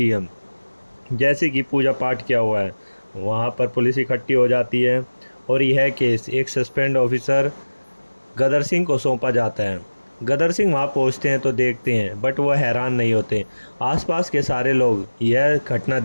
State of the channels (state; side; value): inverted; both; correlation -1.00